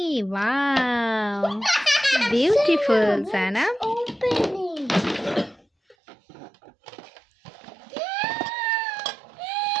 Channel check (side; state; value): left; drops out; at 6.0 s